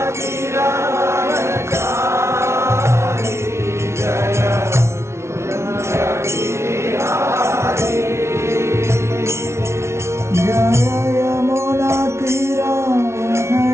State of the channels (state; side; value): late; left; 0.13 ms